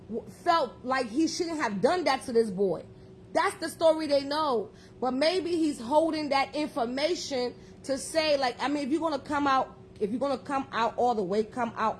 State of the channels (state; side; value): identical; both; correlation 1.00